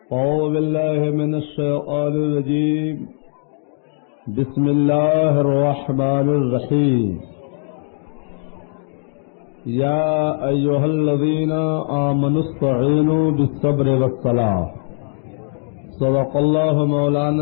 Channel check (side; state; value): right; silent; 59 dB below the other